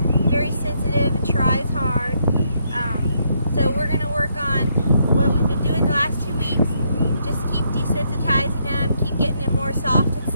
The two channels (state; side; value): inverted; both; correlation -0.74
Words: very sensitive and tries hard. So we're going to work on what we've been doing the last 2 weeks. Just keep desensitizing him, keep getting him more soft and